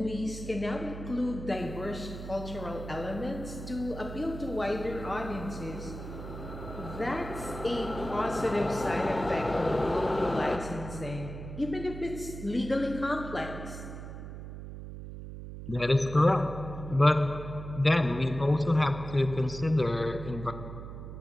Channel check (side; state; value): right; noise; hum, 10 dB below the sound